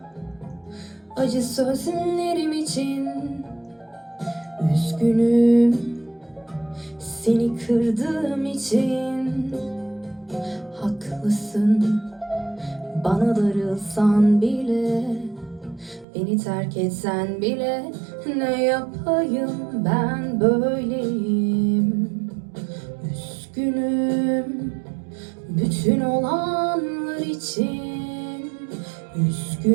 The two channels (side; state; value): left; drops out; at 16.1 s